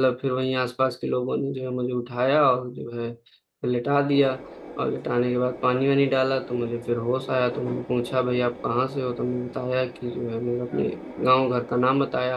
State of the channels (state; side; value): identical; both; correlation 1.00